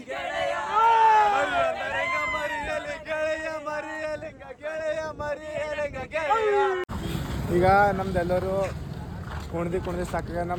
ಮರಿಯಲಿ ಗೆಳೆಯ ಮರಿಯಲಿ ಗೆಳೆಯ ಮರಿಯಲಿಂಗ ಗೆಳೆಯ. ಈಗ ನಮ್ದೆಲ್ಲರೂ ಕುಣ್ದಿ ಸಾಕಾಗ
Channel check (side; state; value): both; identical; correlation 1.00